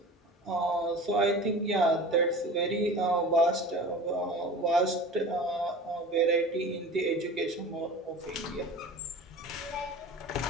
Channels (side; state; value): both; normal; correlation 0.37